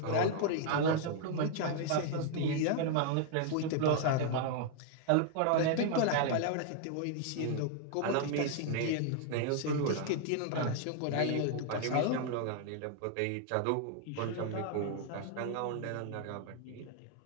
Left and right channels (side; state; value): both; different; correlation 0.00